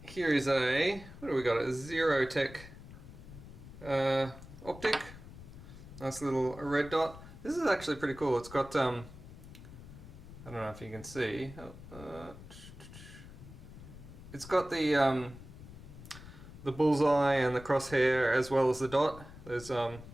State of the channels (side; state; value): left; noise; rumble, 16 dB below the sound